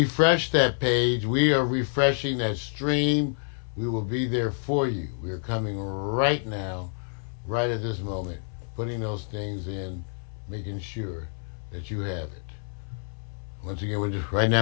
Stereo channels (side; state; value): right; silent; 60 dB below the other